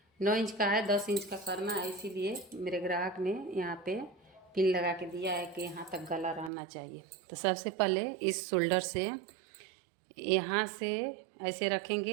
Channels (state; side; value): drops out; left; at 6.5 s